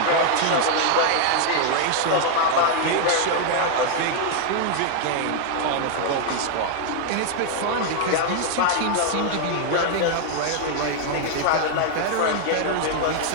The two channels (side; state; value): both; different; correlation 0.00